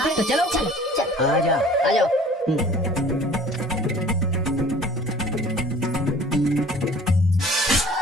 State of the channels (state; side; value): normal; both; correlation 0.48